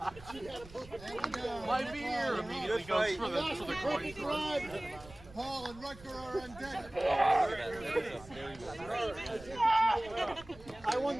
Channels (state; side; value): noise; right; rumble, 19 dB below the sound